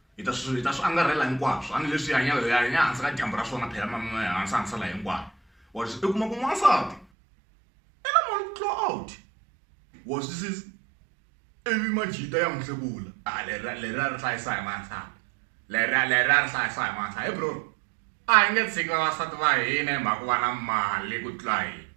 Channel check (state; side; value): drops out; left; at 7.1 s